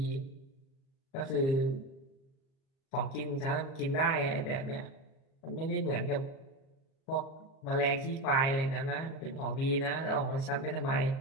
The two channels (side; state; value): right; late; 37 ms